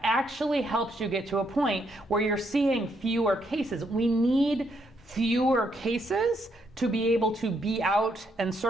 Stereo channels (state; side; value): normal; both; correlation 0.75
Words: actually helps you get to a point where you're seeing fewer cases. We need fewer cases to be able to be out and